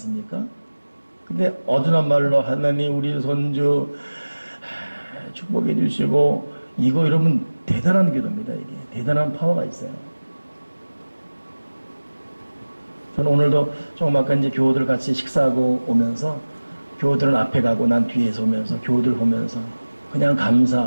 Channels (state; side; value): inverted; both; correlation -1.00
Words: 근데 어두운 말로 하나님 우리 손주 축복해 주시고, 이거 여러분 대단한 기도입니다. 이게 대단한 파워가 있어요. 저는 오늘도 조금 아까 이제 교우들 같이 식사하고 오면서, 교우들은 앞에 가고 난 뒤에서 오면서 교우들 보면서 그냥